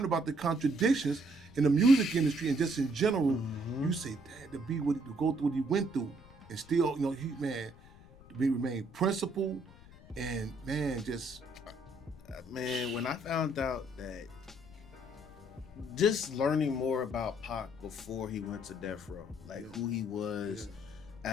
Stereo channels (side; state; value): left; noise; rumble, 21 dB below the sound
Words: about the contradictions in the music industry and just in general, you say, damn, to go through what he went through, and still, remain principled, and man, when I found out that, just learning more about Pac before he went to death row, like who he was. Yeah.